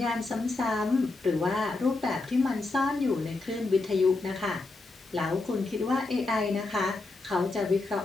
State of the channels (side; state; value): right; quieter; 3.4 dB